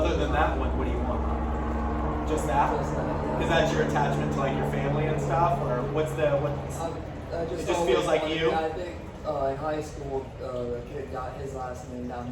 than that one, what do you want? Just that? Just that, yeah. Is that your attachment to like your family and stuff? Or what's it just feels like you? I think in high school, a kid got his last name down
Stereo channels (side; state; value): both; identical; correlation 1.00